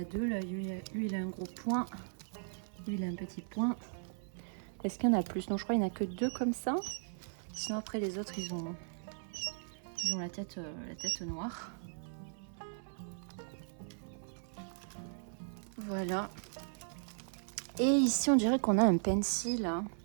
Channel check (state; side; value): silent; left; 53 dB below the other